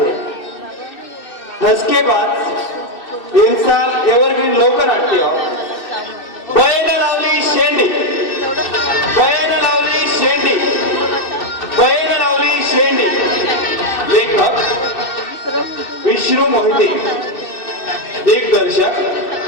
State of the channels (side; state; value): right; late; 2.6 ms